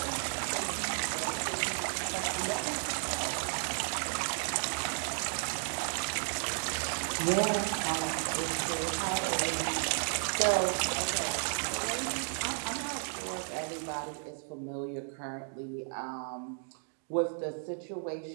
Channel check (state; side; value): silent; left; 55 dB below the other